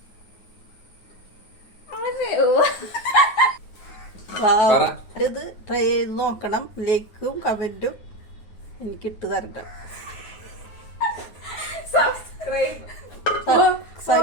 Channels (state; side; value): late; right; 9.5 ms